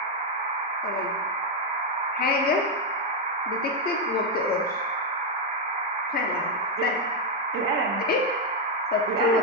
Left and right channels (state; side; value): normal; both; correlation 0.01